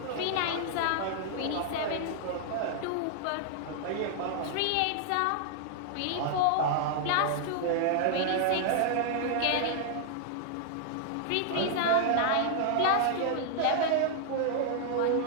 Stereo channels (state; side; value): different; both; correlation 0.00